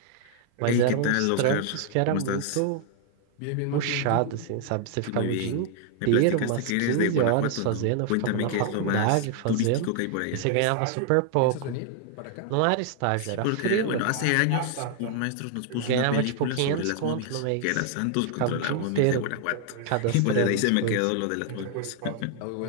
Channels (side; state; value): both; different; correlation 0.00